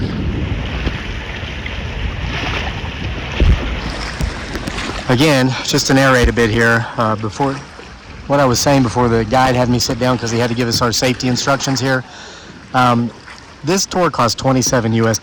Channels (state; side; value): identical; both; correlation 1.00